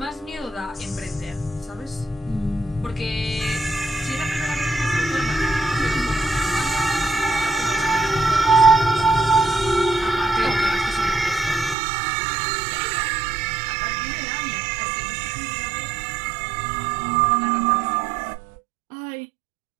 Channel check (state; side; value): drops out; left; at 11.8 s